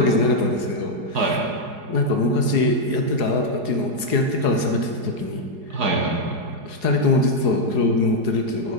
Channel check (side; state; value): left; late; 4.8 ms